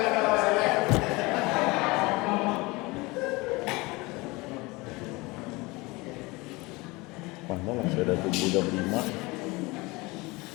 Mana lah, saya dah tunggu jam 5.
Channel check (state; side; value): quieter; right; 23.7 dB